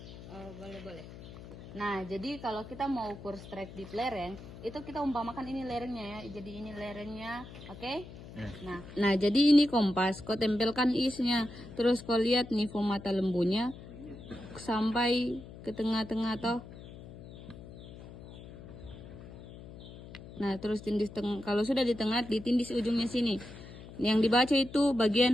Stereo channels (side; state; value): left; noise; hum, 15 dB below the sound